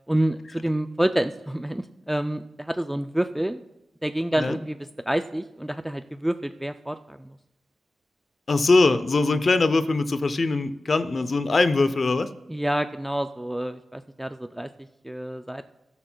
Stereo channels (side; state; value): both; normal; correlation 0.96